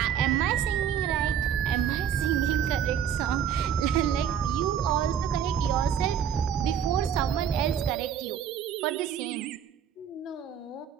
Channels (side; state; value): left; quieter; 8.6 dB